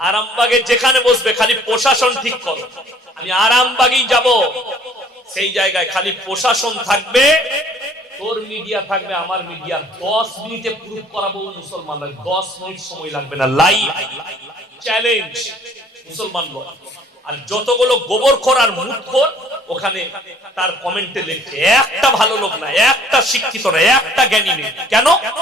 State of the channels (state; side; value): normal; both; correlation 0.57